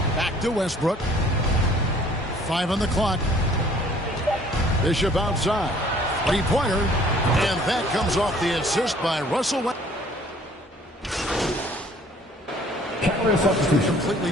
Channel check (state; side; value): normal; both; correlation 0.56